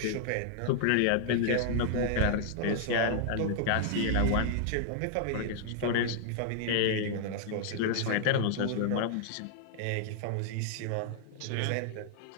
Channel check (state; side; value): different; both; correlation 0.00